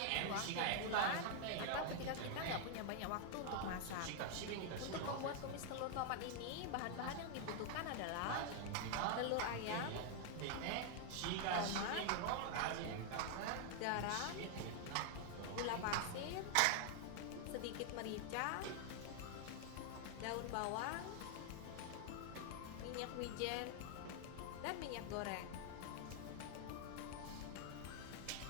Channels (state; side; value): different; both; correlation 0.00